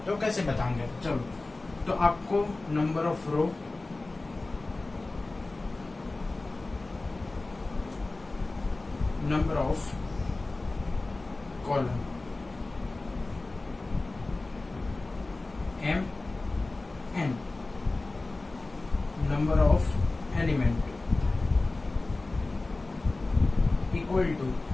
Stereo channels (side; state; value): right; quieter; 3.2 dB